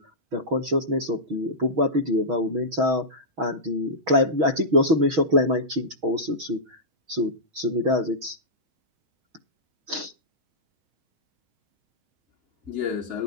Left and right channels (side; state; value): left; late; 6.2 ms